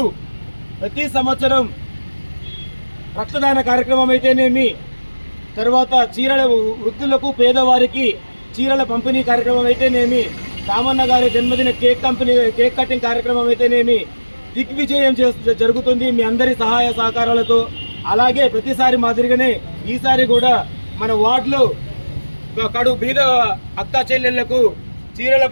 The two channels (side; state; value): both; inverted; correlation -1.00